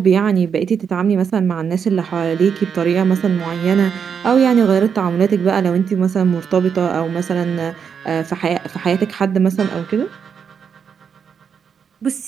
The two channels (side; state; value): left; quieter; 6.9 dB